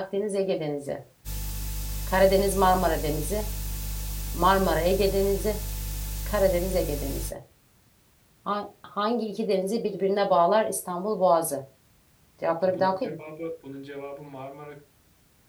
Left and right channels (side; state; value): both; identical; correlation 1.00